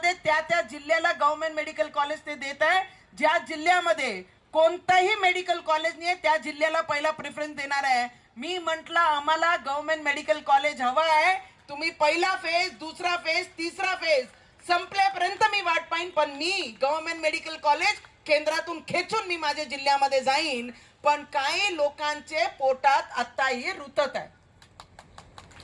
त्या जिल्ह्याला गव्हर्नमेंट मेडिकल कॉलेज ते देत आहे. ज्या जिल्ह्यामध्ये कोणताही मेडिकल कॉलेज नाही त्या जिल्ह्याला पहिला प्रेफरन्स देणार आहे. मी म्हटलं आम्हाला गव्हर्नमेंट मेडिकल कॉलेज हवं आहे, तुम्ही पहिला फेज, दुसरा फेज, तिसरा फेज संपल्यापर्यंत मी वाट पाहिन, पण मी गव्हर्नमेंट मेडिकल कॉलेज केंद्रातून खेचून मी माझ्या जिल्ह्यामध्ये जाईन. पण काही लोकांचे पोटात आताही रुतत आहे.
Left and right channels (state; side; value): identical; both; correlation 1.00